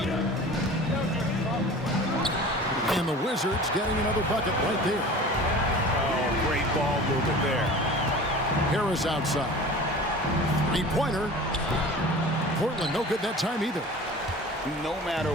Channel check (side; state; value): both; normal; correlation 0.39